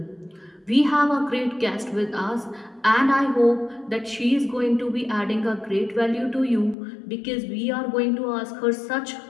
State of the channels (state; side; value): drops out; right; at 6.8 s